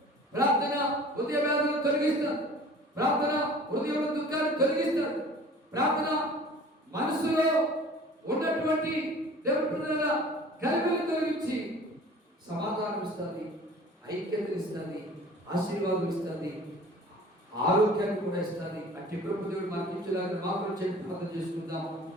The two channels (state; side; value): normal; both; correlation 0.46